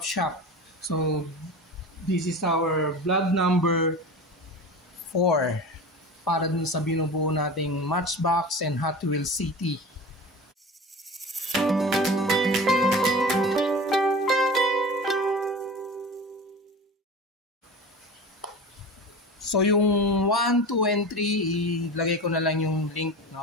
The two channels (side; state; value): both; normal; correlation 0.33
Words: shop. So this is our vlog number 4 para dun sa binubuo nating Matchbox and Hot Wheels City. So yung 1, 2, and 3, ilagay ko na lang yung link,